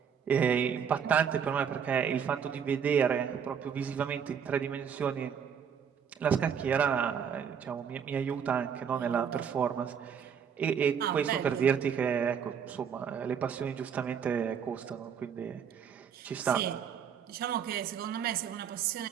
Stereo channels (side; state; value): left; quieter; 7.5 dB